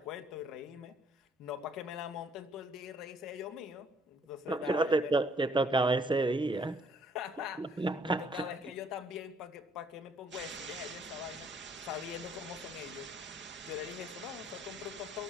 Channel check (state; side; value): normal; both; correlation 0.64